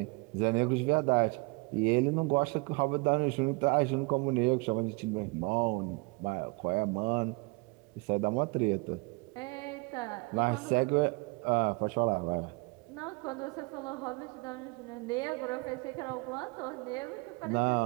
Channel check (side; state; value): left; quieter; 28.8 dB